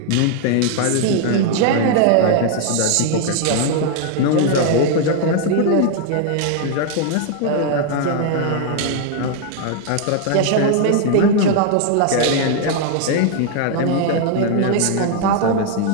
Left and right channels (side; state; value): both; different; correlation 0.00